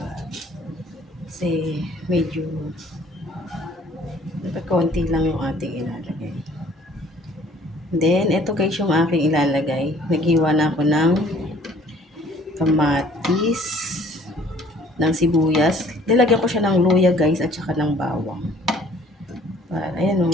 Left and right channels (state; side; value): normal; both; correlation 0.55